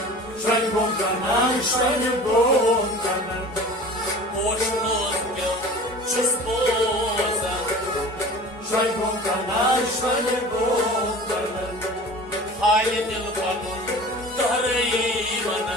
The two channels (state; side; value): normal; both; correlation 0.40